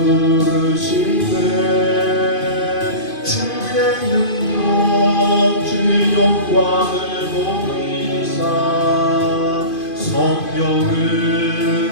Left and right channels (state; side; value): late; right; 2.5 ms